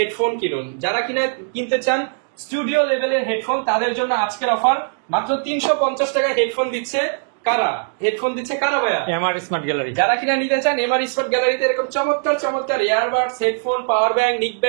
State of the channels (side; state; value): left; silent; digital silence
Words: কিনুন। যারা কিনা কিনতে চান স্টুডিও লেভেলের হেডফোন, তাদের জন্য আজকের অফার মাত্র 350 টাকায় হেডফোন দিচ্ছে কারা? হেডফোন দিচ্ছে কারা ভাইয়া? MR smart gallery. যারা কিনা নিতে চান এমআর স্মার্ট গ্যালারিতে এরকম চমৎকার চমৎকার ইয়ারবাডস, হেডফোন, পাওয়ার ব্যাংক, নিক